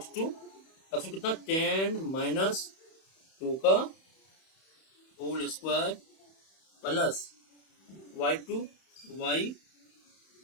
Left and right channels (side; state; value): right; late; 31 ms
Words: कितना 10 माइनस 2 का whole square plus y2 y